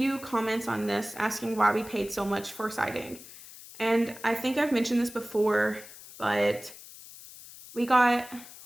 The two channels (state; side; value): noise; left; hiss, 17 dB below the sound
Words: comments on this asking why we paid so much for siding. And I think I've mentioned this before, but we got